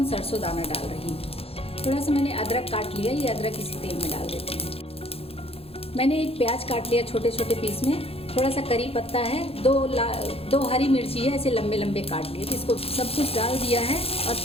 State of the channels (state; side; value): late; right; 0.28 ms